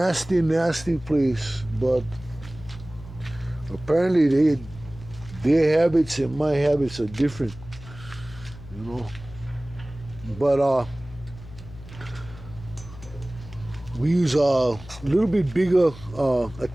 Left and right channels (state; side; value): noise; left; hum, 17 dB below the sound